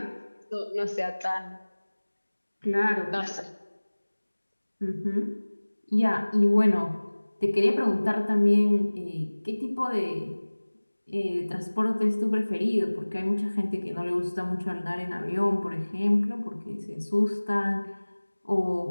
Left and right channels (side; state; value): both; inverted; correlation -1.00